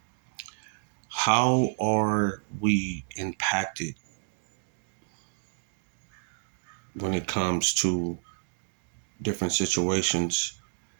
How are we impacted when it comes to different situations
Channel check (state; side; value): silent; left; digital silence